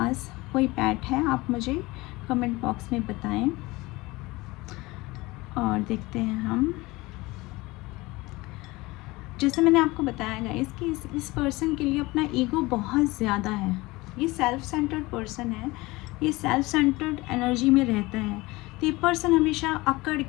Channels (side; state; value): right; quieter; 21.6 dB